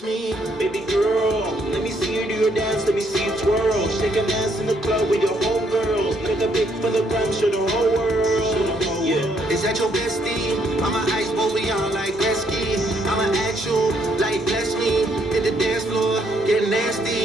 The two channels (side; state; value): both; normal; correlation 0.71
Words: me, baby girl. Let me see you do your dance, let me see you twirl. Shake an ass in the club with your homegirls. Make a big for the gram, show the whole world. Yeah, is that your bestie? I'm an ice boy, we on like Gretzky. I'm an actual, like bless me. Hit the dance floor, get